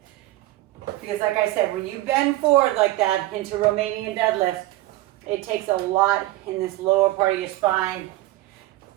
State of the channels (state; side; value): quieter; left; 17.3 dB